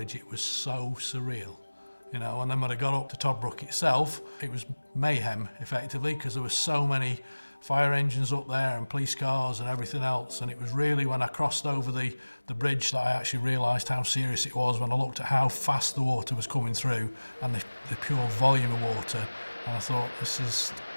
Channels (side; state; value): both; inverted; correlation -1.00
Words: It was so surreal. You know, and then when I got up to Toddbrook itself, it was mayhem, effectively, because there were so many fire engines up there and police cars and everything else. And it was really when I crossed over the bridge that I actually realised how serious it was when I looked at how fast the water was coming through and the pure volume of water. And I thought, this is